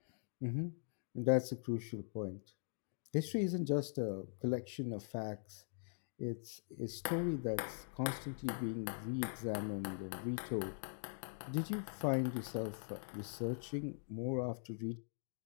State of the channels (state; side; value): silent; right; digital silence